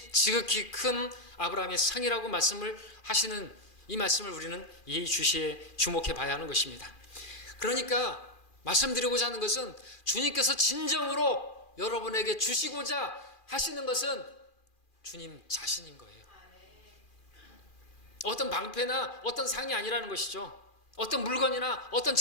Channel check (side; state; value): right; late; 2.4 ms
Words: 지극히 큰 아브라함의 상이라고 말씀을 하시는 이 말씀을 우리는 예의주시에 주목해 봐야 하는 것입니다. 그러니까 말씀드리고자 하는 것은 주님께서 진정으로 여러분에게 주시고자 하시는 것은 주님 자신인 거예요. 어떤 방패나 어떤 상이 아니라는 것이죠. 어떤 물건이나 어떤